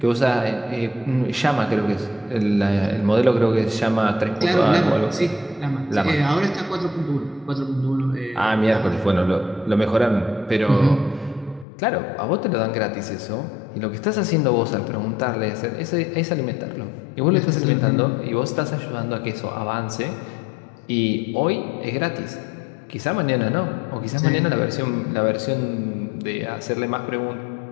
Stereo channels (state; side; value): drops out; right; at 11.7 s